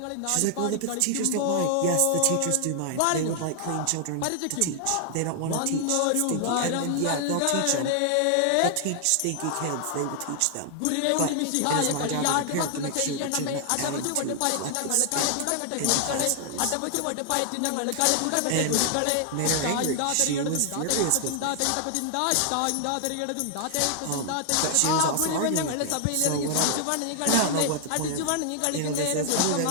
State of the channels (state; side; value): different; both; correlation 0.00